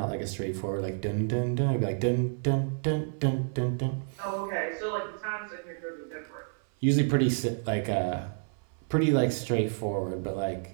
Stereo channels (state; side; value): silent; left; 58 dB below the other